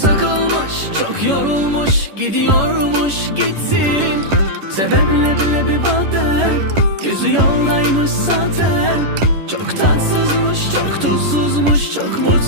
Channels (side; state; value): left; late; 11 ms